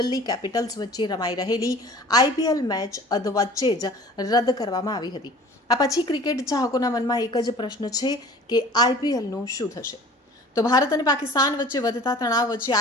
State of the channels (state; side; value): normal; both; correlation 0.45